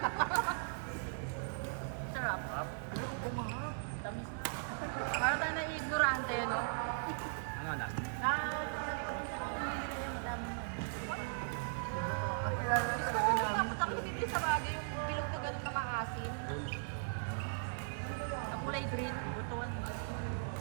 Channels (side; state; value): left; silent; digital silence